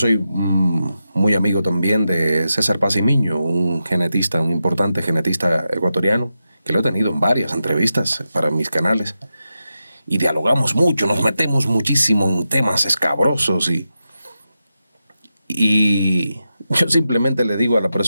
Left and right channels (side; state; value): both; inverted; correlation -0.89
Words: muy amigo también de César Pacimiño, un importante genetista ecuatoriano, que lo he tenido en varias entrevistas para mis canales. Y dialogamos mucho, nos metemos muchísimo en temas escabrosos y yo simplemente le digo a la